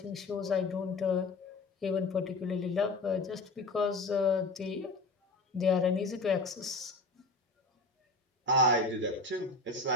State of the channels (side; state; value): right; quieter; 3.2 dB